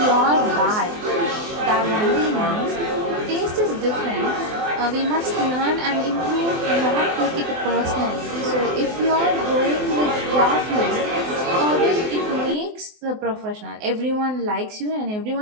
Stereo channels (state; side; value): late; left; 24 ms